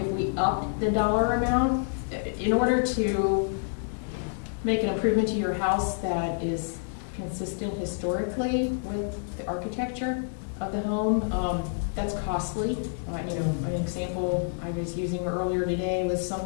we upped the dollar amount, in order to make an improvement to your house that is consistent historically with the architecture of the home, that's costly. An example I was using earlier today was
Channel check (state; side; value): silent; right; digital silence